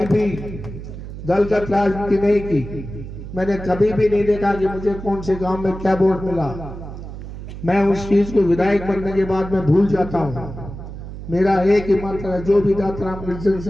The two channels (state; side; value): noise; right; hum, 11 dB below the sound